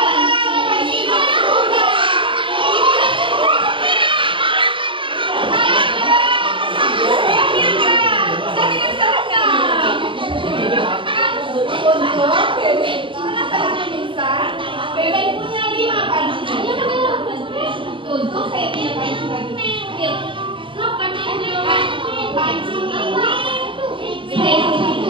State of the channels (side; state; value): left; late; 0.25 ms